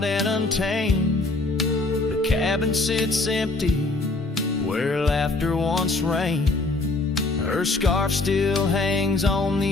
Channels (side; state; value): right; quieter; 3.2 dB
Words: and untamed. The cabin sits empty where laughter once reigned. Her scarf still hangs on